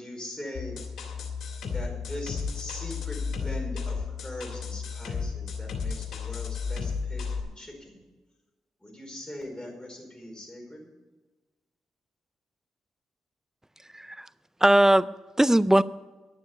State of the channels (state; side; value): normal; both; correlation 0.93